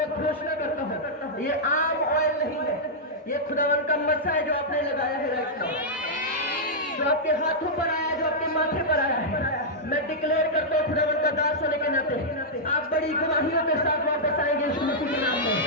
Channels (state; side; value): normal; both; correlation -0.08